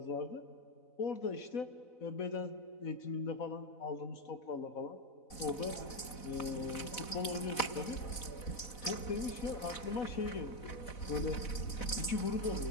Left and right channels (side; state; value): right; late; 4.0 ms